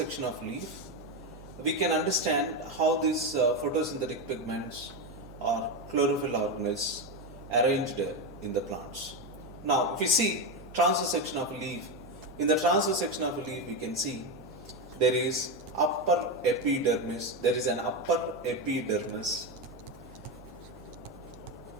can understand how these photosynthetic pigments or chlorophyll organelles arranged in the plants. Now, if you see transverse section of a leaf, in the transverse section of a leaf, we can see there is upper epidermis. There is an upper epidermis.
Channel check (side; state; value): both; normal; correlation 0.12